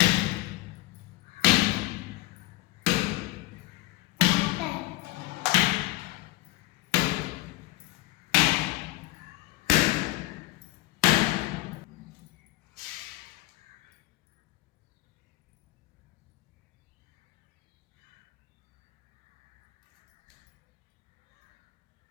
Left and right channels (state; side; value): quieter; right; 19.4 dB